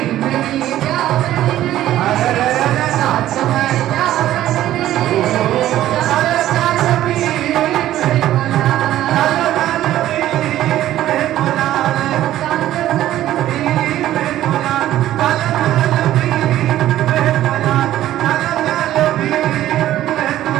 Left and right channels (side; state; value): left; quieter; 13.4 dB